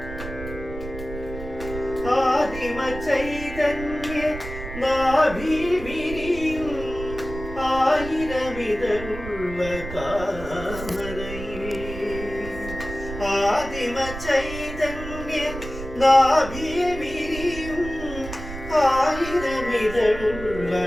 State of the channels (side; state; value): right; noise; rumble, 10 dB below the sound